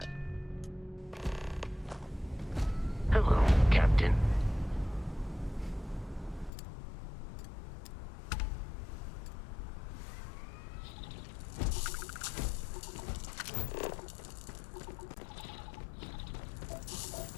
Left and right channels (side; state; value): right; drops out; at 6.5 s